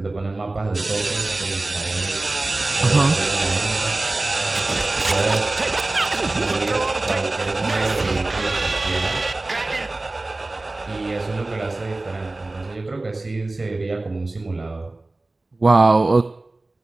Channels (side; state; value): left; quieter; 3.0 dB